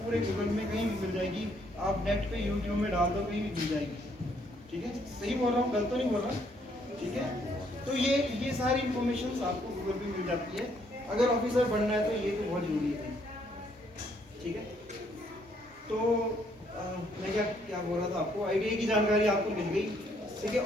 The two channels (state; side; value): normal; both; correlation 0.69